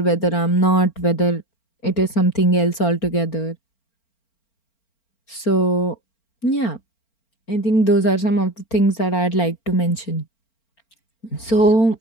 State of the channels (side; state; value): right; late; 4.4 ms